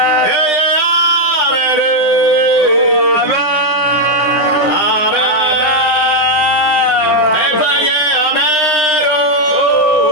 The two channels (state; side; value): late; right; 9.8 ms